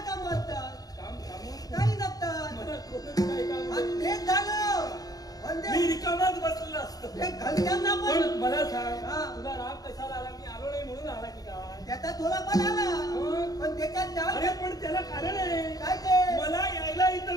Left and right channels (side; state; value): right; late; 0.18 ms